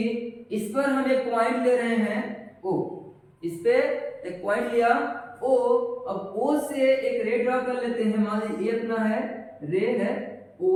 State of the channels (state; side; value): identical; both; correlation 1.00